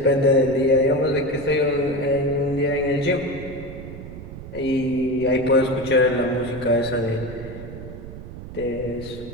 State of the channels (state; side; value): noise; right; rumble, 12 dB below the sound